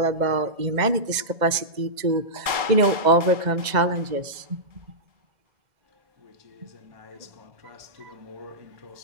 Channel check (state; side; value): late; left; 2.0 ms